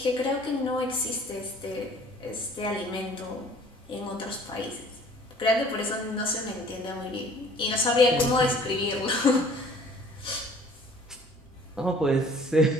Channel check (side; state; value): both; normal; correlation 0.53